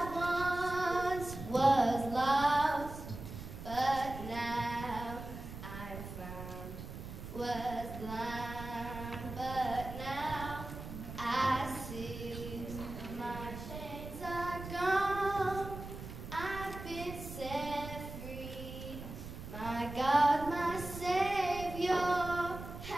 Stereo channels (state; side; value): noise; right; rumble, 10 dB below the sound